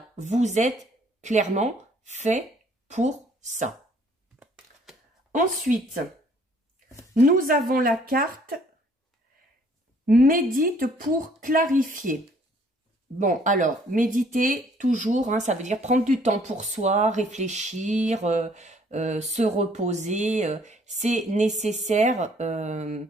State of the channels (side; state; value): both; normal; correlation 0.61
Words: vous êtes clairement fait pour ça. Ensuite, nous avons la carte « Médite pour clarifier ». Bon, alors, méditer, toujours, hein, ça veut dire prendre du temps pour soi, réfléchir, se reposer. C'est nécessaire,